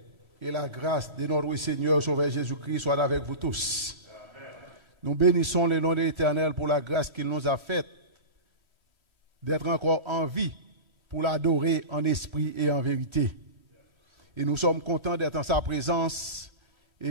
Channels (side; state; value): left; late; 3.1 ms